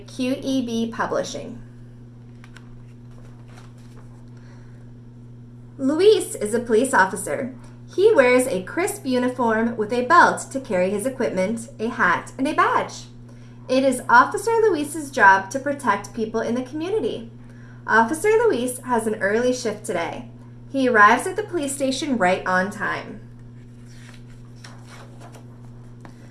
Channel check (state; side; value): identical; both; correlation 1.00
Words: QEB Publishing. Luis is a police officer. He wears a crisp uniform with a belt to carry his equipment, a hat, and a badge. It is Officer Luis's job to protect people in the community. Officer Luis has an early shift today. He arrives at the police station right on time.